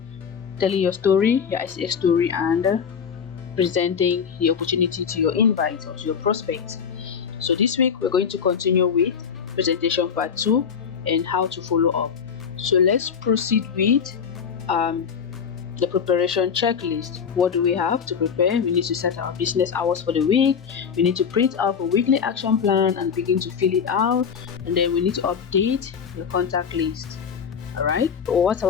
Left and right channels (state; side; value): quieter; right; 6.9 dB